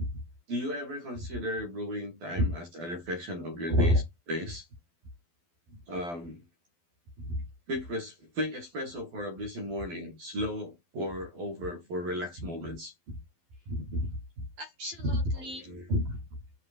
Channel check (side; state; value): left; late; 12 ms